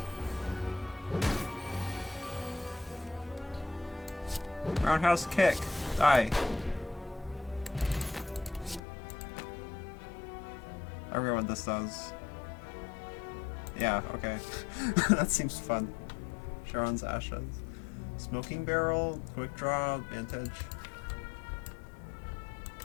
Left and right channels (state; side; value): drops out; right; at 8.8 s